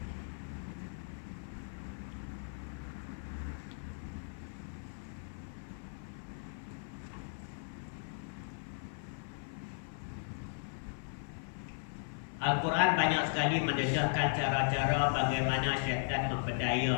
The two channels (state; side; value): silent; right; 53 dB below the other